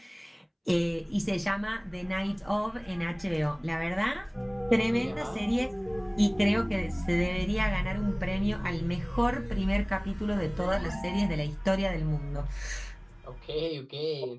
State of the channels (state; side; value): identical; both; correlation 1.00